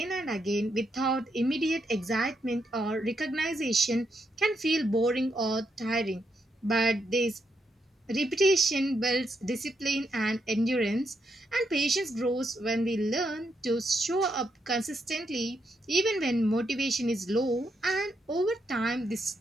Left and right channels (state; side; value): normal; both; correlation 0.80